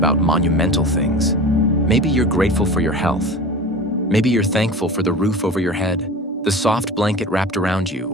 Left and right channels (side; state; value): both; normal; correlation 0.34